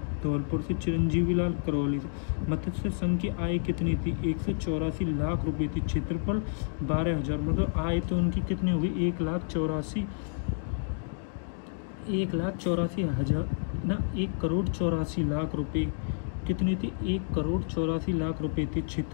धौलपुर से, चिरंजीवी लाल करौली से। मत्स्य संघ की आय कितनी थी? 184 लाख रुपए थी। क्षेत्रफल 12,000। मतलब आय तो उनकी कितनी होगी? 1,84,000 रुपए। कितनी थी? 1,84,00,000 रुपए थी।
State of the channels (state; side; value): silent; right; digital silence